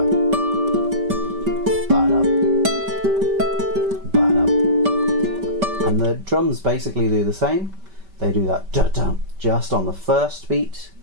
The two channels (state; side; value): late; left; 5.2 ms